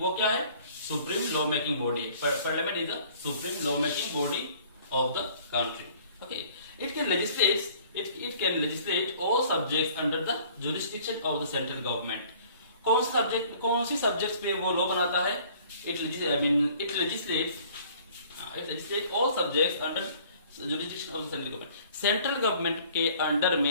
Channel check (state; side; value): inverted; both; correlation -0.54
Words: क्या है? Supreme law making body. Parliament is the supreme law making body of the country. Okay, it can legislate all subjects under the jurisdiction of the central government. कौन सी सब्जेक्ट्स पे वो लॉ बनाता है? It legislate all subjects under jurisdiction of the central government. Central government के under